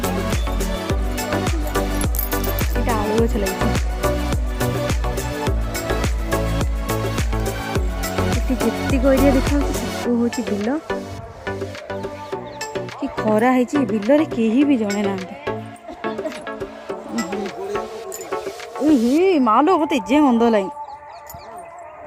ଏଇଟା ଆଳୁ ଗଛ ଲାଗିଛି। ଏଠି ଯେତିକ ଏରିଆ ଦେଖାଯାଉଛି ସବୁ ହେଉଛି ବିଲ। କି ଖରା ହେଇଛି ବିଲରେ କେହି ବି ଜଣେ ନାହାନ୍ତି। ମାଲୋ ମତେ ଏଯାଏଁ ଗନ୍ଧ ଲାଗି।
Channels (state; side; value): identical; both; correlation 1.00